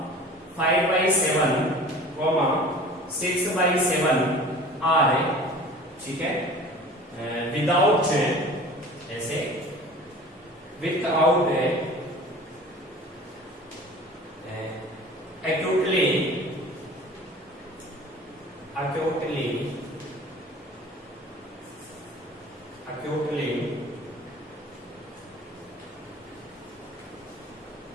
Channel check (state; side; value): normal; both; correlation 0.42